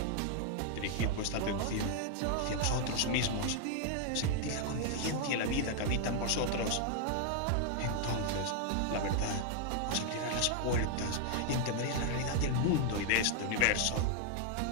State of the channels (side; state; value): both; different; correlation 0.00